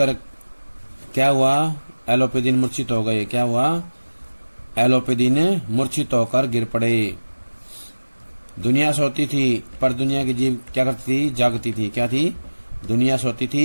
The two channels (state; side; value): inverted; both; correlation -1.00